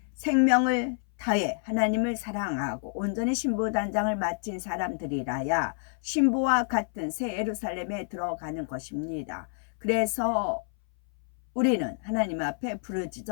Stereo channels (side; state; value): right; silent; 59 dB below the other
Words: 생명을 다해 하나님을 사랑하고 온전히 신부단장을 마친 사람들이라야 신부와 같은 새 예루살렘에 들어가는 것입니다. 그래서 우리는 하나님 앞에